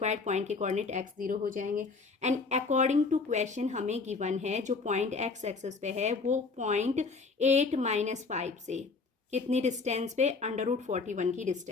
पॉइंट के कोऑर्डिनेट एक्स 0 हो जाएंगे। एंड अकॉर्डिंग टू क्वेश्चन हमें गिवन है जो पॉइंट एक्स एक्सेस पे है वो पॉइंट 8 - 5 से कितनी डिस्टेंस पे? √41 की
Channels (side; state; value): right; quieter; 4.3 dB